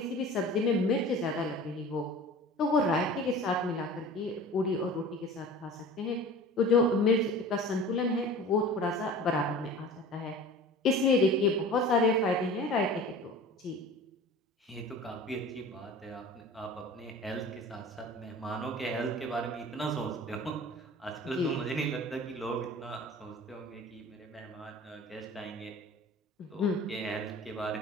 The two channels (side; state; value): both; normal; correlation 0.40